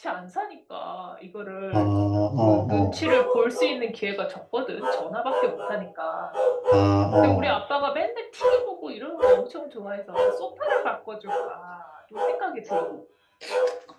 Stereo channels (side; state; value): both; identical; correlation 1.00